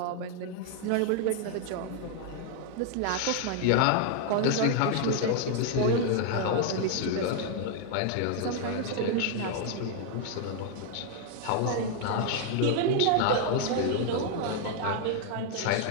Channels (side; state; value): both; different; correlation 0.00